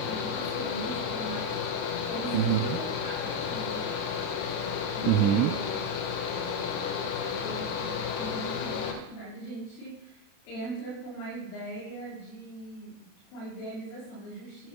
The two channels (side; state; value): right; late; 30 ms